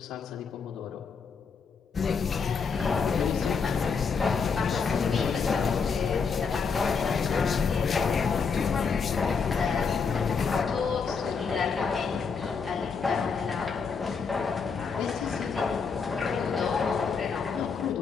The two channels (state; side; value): quieter; right; 5.5 dB